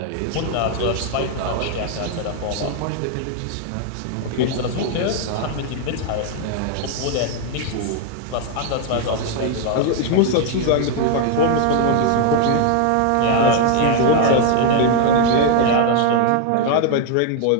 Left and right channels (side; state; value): both; different; correlation 0.00